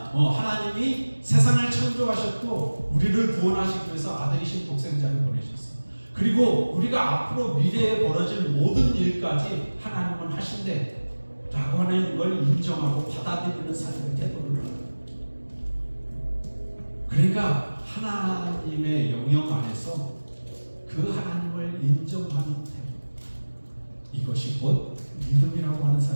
하나님이 세상을 창조하셨고 우리를 구원하시기 위해서 아들이신 독생자를 보내셨어요. 그리고 우리가 앞으로 미래에 벌어질 모든 일까지 하나님은 하신대 라고 하는 걸 인정하고 받아들이는 삶의 태도를 하는. 그러니까 하나님의 영역 안에서 그 하나님을 인정하는 태도, 이것이 곧 믿음이라고 하는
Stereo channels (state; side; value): inverted; both; correlation -1.00